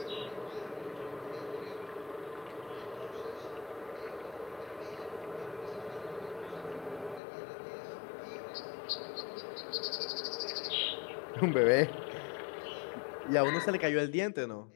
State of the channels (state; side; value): drops out; right; at 7.2 s